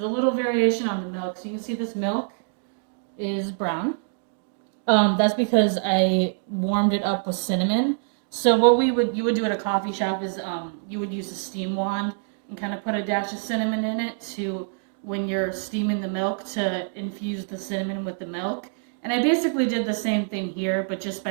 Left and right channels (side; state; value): left; silent; digital silence